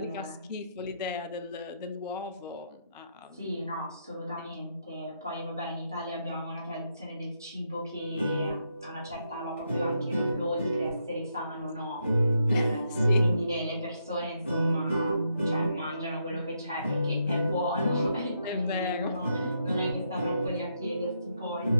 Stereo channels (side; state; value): both; inverted; correlation -0.78